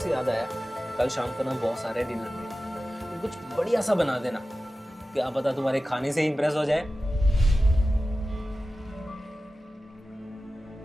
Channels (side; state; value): both; normal; correlation 0.95